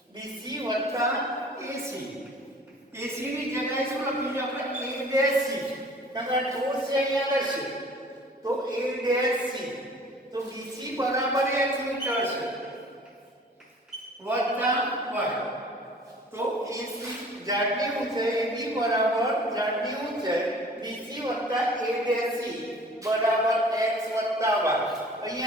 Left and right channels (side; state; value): both; normal; correlation 0.48